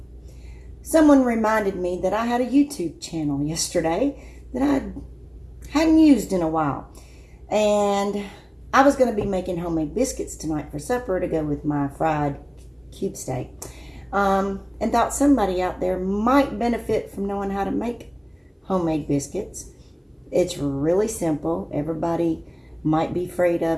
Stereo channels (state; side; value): identical; both; correlation 1.00